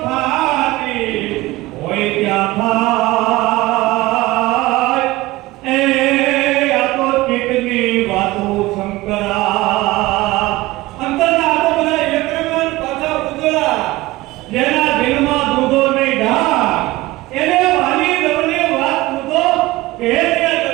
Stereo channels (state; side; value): quieter; left; 19.1 dB